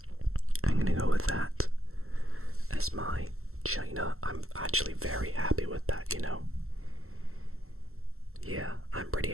I'm gonna go with that as my China. I'm actually very happy with that, you know. Yeah, I'm pretty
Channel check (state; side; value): late; left; 0.63 ms